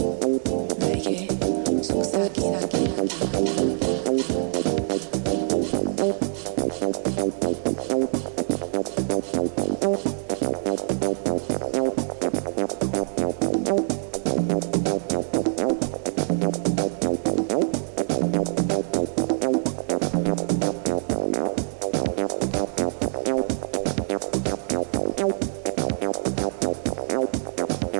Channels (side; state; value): left; silent; digital silence